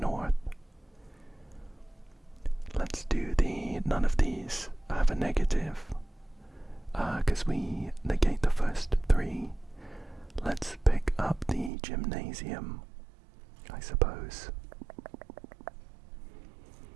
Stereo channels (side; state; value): left; drops out; at 11.7 s